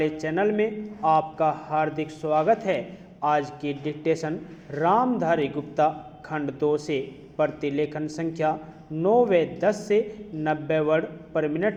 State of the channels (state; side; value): identical; both; correlation 1.00